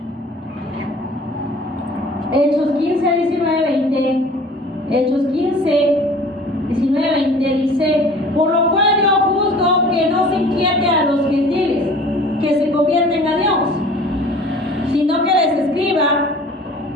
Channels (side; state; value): both; normal; correlation 0.47